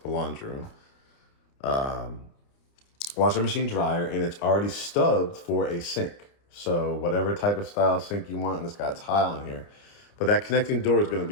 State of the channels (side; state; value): right; late; 29 ms